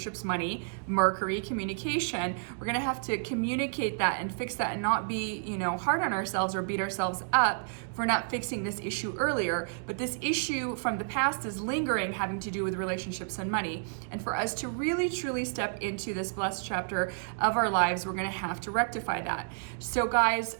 money, Mercury, communication. We're going to have to communicate that and fix that and not be, hard on ourselves or beat ourselves up for not fixing this issue earlier. But this issue from the past is lingering, having to do with relationships and money. And for us to really truly step into this blessed chapter of our lives, we're going to have to rectify that. So guys,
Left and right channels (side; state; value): left; silent; digital silence